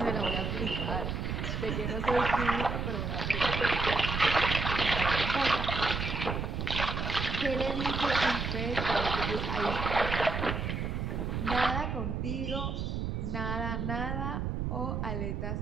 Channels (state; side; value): noise; right; rumble, 2 dB below the sound